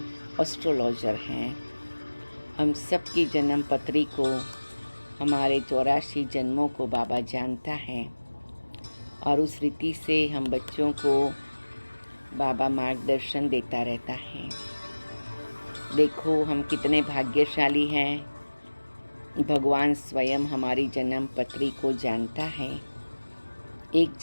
एस्ट्रोलॉजर हैं। हम सब की जन्म पत्री को, हमारे 84 जन्मों को बाबा जानता है और उस रीति से हम बच्चों को बाबा मार्गदर्शन देता रहता है। देखो हम कितने भाग्यशाली हैं, भगवान स्वयं हमारी जन्म पत्री को जानता है। एक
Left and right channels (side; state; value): both; inverted; correlation -1.00